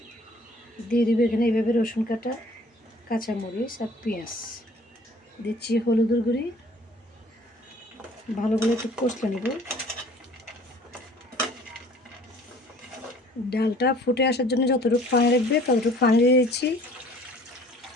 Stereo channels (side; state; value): both; normal; correlation 0.53